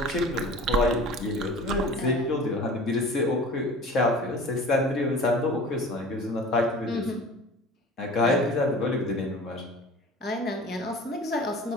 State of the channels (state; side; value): normal; both; correlation 0.41